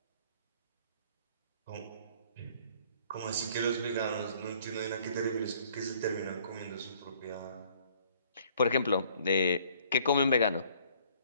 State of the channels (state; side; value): inverted; both; correlation -0.59